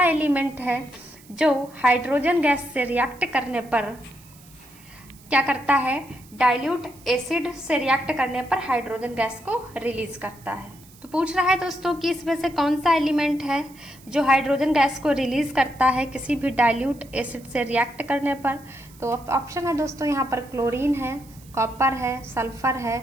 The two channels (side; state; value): right; noise; hiss, 24 dB below the sound